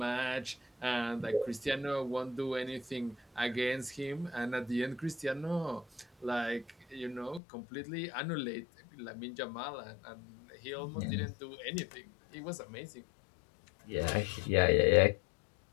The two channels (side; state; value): right; drops out; at 7.4 s